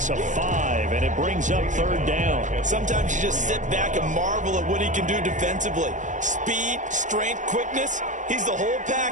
of 5, and it brings up 3rd down. Sometimes you just sit back and marvel at what he can do defensively. Speed, strength, quickness, he's the whole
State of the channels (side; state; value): left; late; 0.36 ms